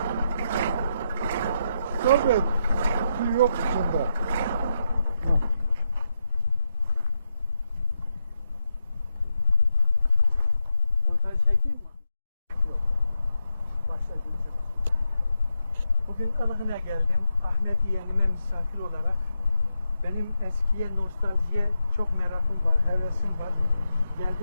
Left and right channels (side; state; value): both; inverted; correlation -0.83